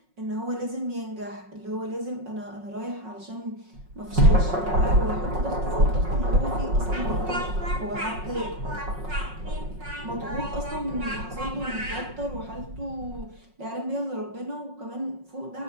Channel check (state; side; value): late; left; 5.4 ms